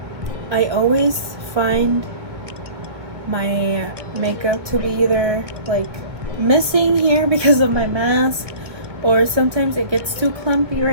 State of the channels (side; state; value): left; late; 1.6 ms